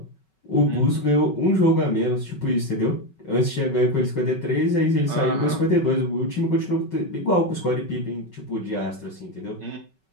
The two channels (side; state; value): right; late; 5.3 ms